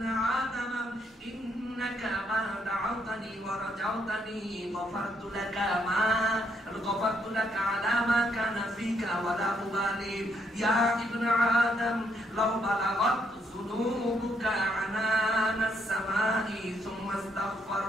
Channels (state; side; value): normal; both; correlation 0.73